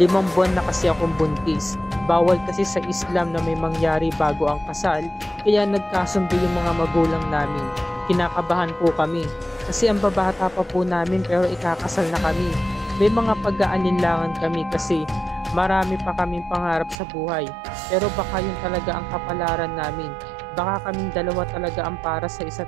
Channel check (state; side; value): drops out; left; at 16.9 s